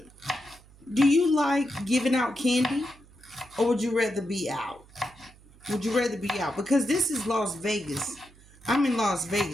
Do you like giving out candy or would you rather be out? Would you rather be out? Because this is Las Vegas. I'm in Las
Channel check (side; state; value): right; noise; hum, 25 dB below the sound